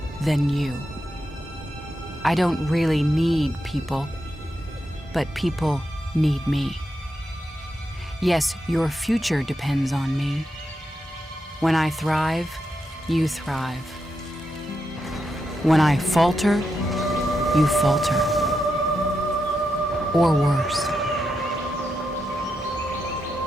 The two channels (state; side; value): normal; both; correlation 0.85